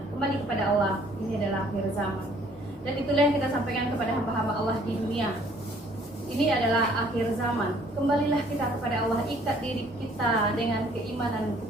Kembali kepada Allah, ini adalah akhir zaman. Dan itulah yang kita sampaikan kepada hamba-hamba Allah di dunia. Ini adalah akhir zaman. Kembalilah kita kepada Allah, ikat diri kita dengan keimanan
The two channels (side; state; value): both; normal; correlation 0.59